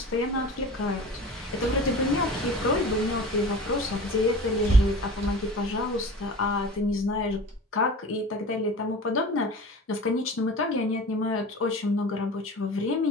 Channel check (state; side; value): normal; both; correlation 0.37